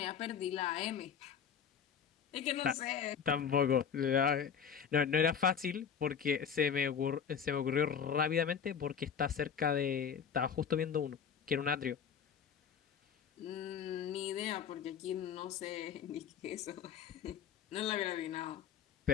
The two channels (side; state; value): right; quieter; 7.3 dB